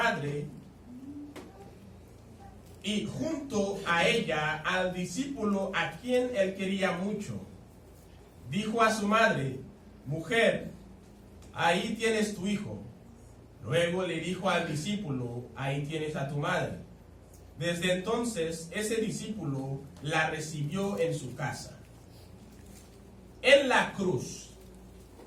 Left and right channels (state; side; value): identical; both; correlation 1.00